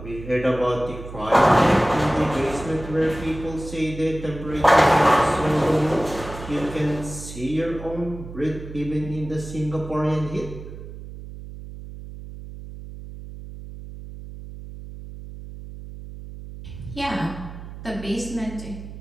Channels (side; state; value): right; noise; hum, 13 dB below the sound